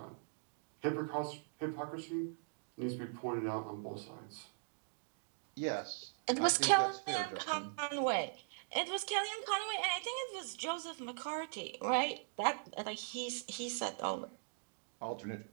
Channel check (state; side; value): silent; left; digital silence